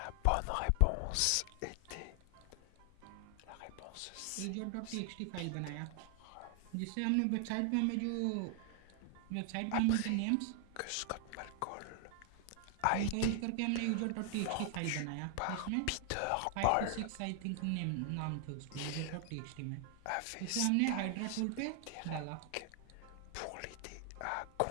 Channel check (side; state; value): both; different; correlation 0.00